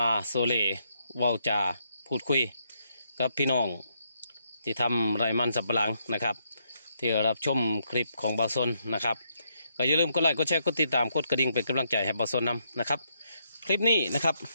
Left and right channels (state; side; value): inverted; both; correlation -0.76